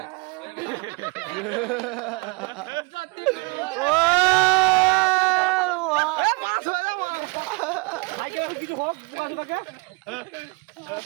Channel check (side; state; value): left; quieter; 28.4 dB